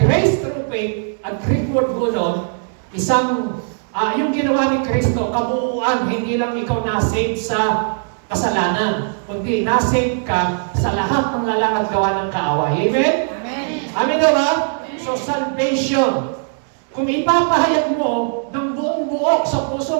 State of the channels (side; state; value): left; silent; 66 dB below the other